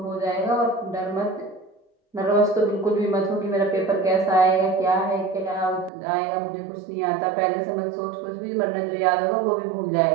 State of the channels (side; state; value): left; drops out; at 5.9 s